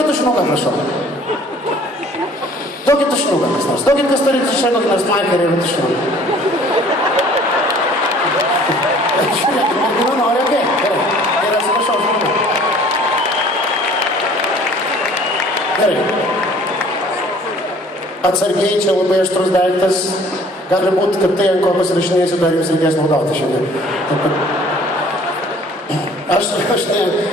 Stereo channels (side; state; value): both; normal; correlation 0.53